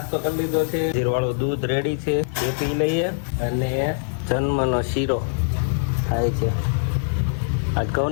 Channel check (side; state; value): right; silent; 63 dB below the other